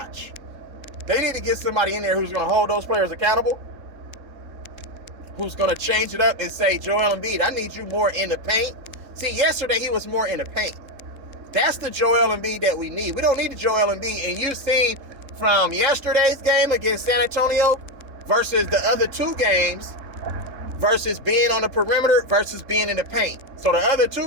They need to get somebody in there who's going to hold those players accountable, who's going to change it up and say, Joel Embiid, I need you more in the paint. See, yesterday he was more in the paint. That's the Joel Embiid that we need. We don't need the Joel Embiid. And you've seen from yesterday's game against San Antonio versus the other 2 games versus being on the perimeter versus being in the paint. So the other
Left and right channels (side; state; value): left; late; 3.7 ms